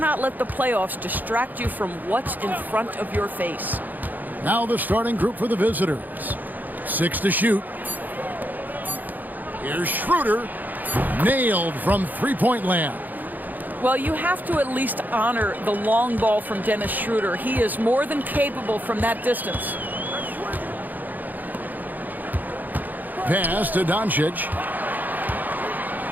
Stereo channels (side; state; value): left; late; 0.084 ms